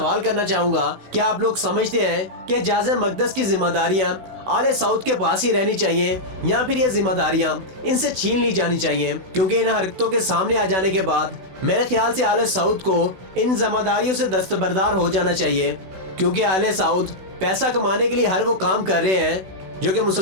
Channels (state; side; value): late; left; 16 ms